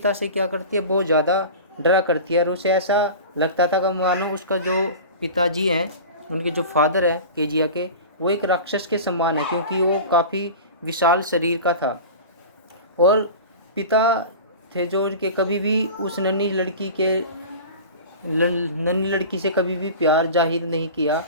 से क्या करती है, बहुत ज़्यादा डरा करती है। और उसे ऐसा लगता था कि मानो उसका जो पिताजी हैं, उनके जो फादर हैं केजिया के, वो एक राक्षस के समान है, क्योंकि वो काफ़ी विशाल शरीर का था। और पिता थे जो उनके कभी भी उस नन्ही लड़की से कभी भी प्यार जाहिर नहीं किया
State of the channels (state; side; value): inverted; both; correlation -0.34